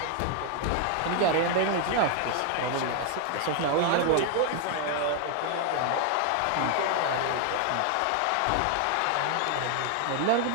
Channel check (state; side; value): different; both; correlation 0.00